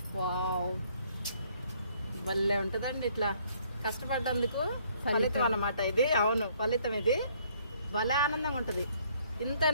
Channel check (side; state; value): both; inverted; correlation -0.64